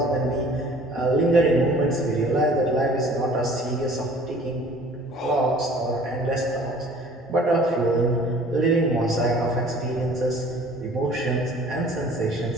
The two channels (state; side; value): normal; both; correlation 0.50